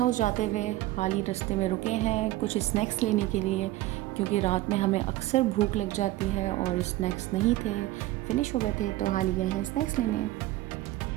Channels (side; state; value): left; quieter; 16.6 dB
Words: जाते हुए हाल ही रास्ते में रुके हैं कुछ स्नैक्स लेने के लिए, क्योंकि रात में हमें अक्सर भूख लग जाती है और स्नैक्स नहीं थे, फिनिश हो गए थे, तो हाल ही गए हैं स्नैक्स लेने।